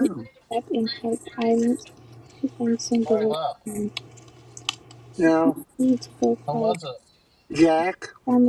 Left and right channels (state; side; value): identical; both; correlation 1.00